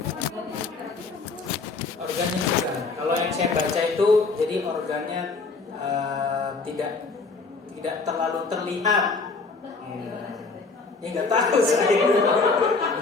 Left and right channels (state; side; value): quieter; right; 4.2 dB